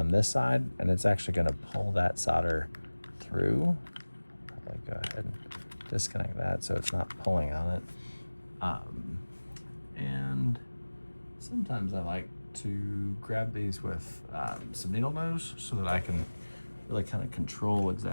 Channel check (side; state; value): both; inverted; correlation -1.00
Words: this side, and it's actually going to pull that solder through. Probably go ahead and disconnect that so it's not pulling on it. And sometimes I like to grab these with some needle nose so that I can really kind of control